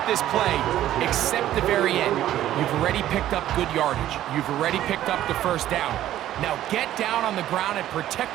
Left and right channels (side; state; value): left; quieter; 12.9 dB